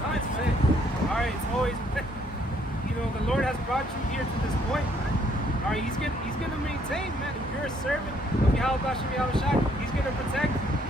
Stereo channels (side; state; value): both; normal; correlation 0.67